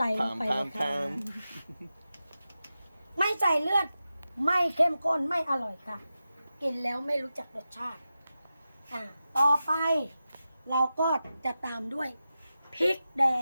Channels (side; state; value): both; inverted; correlation -0.92